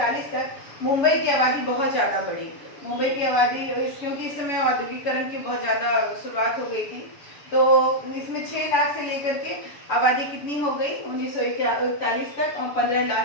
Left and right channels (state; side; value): late; right; 7.0 ms